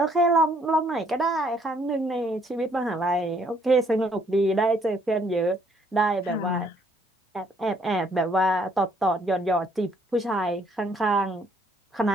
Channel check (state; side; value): normal; both; correlation 0.66